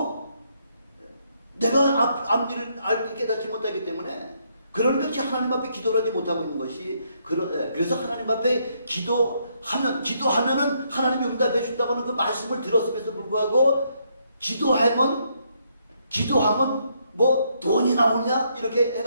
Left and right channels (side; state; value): both; inverted; correlation -0.74